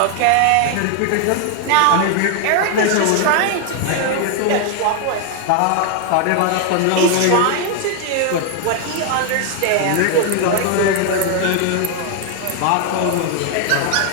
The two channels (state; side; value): different; both; correlation 0.00